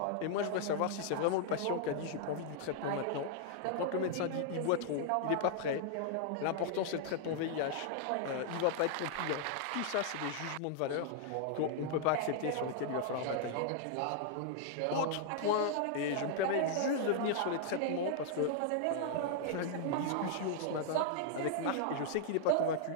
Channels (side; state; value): both; different; correlation -0.01